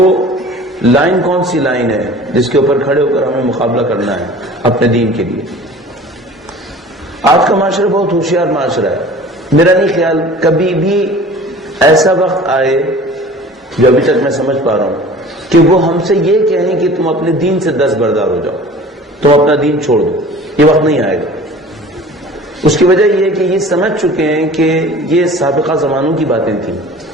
لائن کون سی لائن ہے جس کے اوپر کھڑے ہو کر ہمیں مقابلہ کرنا ہے اپنے دین کے لیے. آج کا معاشرہ بہت ہوشیار معاشرہ ہے. میرا نہیں خیال کبھی بھی ایسا وقت آئے جو ابھی تک میں سمجھ پا رہا ہوں کہ وہ ہم سے یہ کہیں کہ تم اپنے دین سے دستبردار ہو جاؤ، تم اپنا دین چھوڑ دو، یہ وقت نہیں آئے گا۔ اس کی وجہ یہ ہے کہ یہ سمجھ چکے ہیں کہ یہ سابقہ زمانوں کی باتیں تھیں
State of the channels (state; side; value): normal; both; correlation 0.43